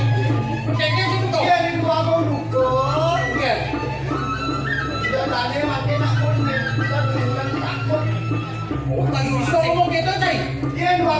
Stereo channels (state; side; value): identical; both; correlation 1.00